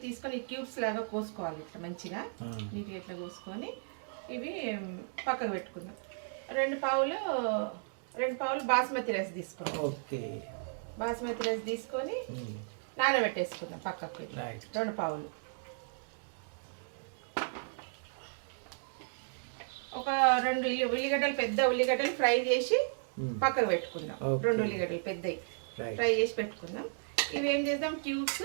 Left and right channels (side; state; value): left; silent; digital silence